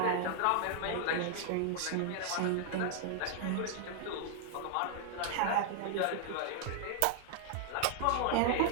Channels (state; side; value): different; both; correlation 0.00